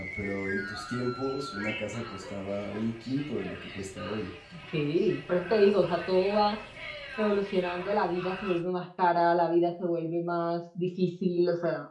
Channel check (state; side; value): identical; both; correlation 1.00